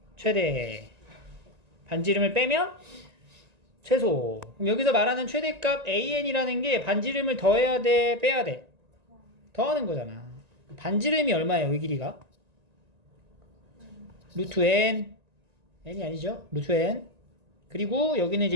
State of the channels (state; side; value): late; left; 1.9 ms